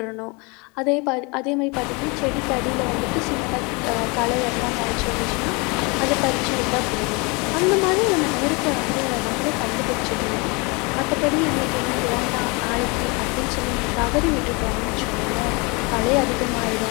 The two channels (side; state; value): right; quieter; 28.8 dB